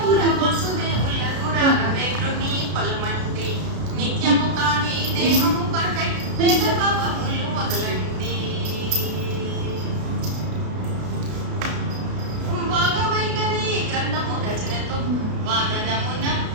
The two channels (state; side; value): late; left; 33 ms